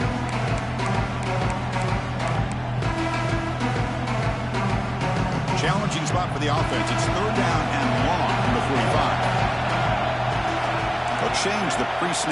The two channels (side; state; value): both; identical; correlation 1.00